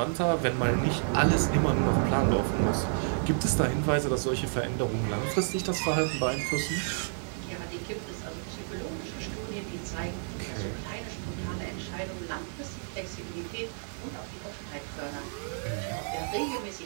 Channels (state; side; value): silent; left; digital silence